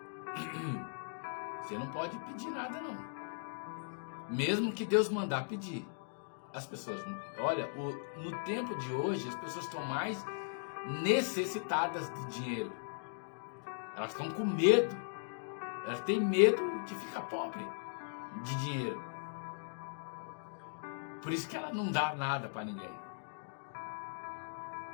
você não pode pedir nada não, mesmo que Deus mandar pedir. As pessoas, olha, no tempo de hoje as pessoas estão mais necessitadas de dinheiro. Elas estão com medo. Elas têm medo de ficar pobre de dinheiro. Por isso que ela não dá nada para ninguém.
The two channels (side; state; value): right; silent; digital silence